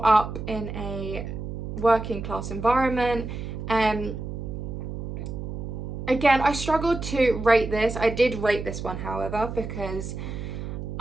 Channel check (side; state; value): right; noise; hum, 7 dB below the sound